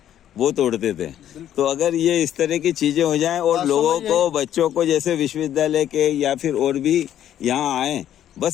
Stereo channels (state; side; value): quieter; right; 11.0 dB